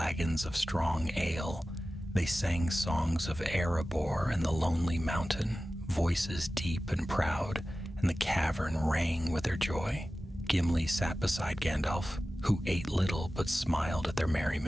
of strong ale. They sang songs of Erebor and the Lonely Mountain, voices deep and proud, and the cavern rang with their joy. Gimli sat beside Gandalf, who ate little but smiled at their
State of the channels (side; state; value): both; normal; correlation 0.95